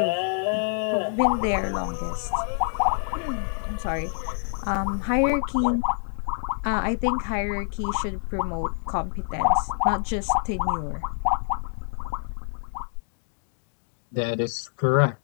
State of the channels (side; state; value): right; silent; 59 dB below the other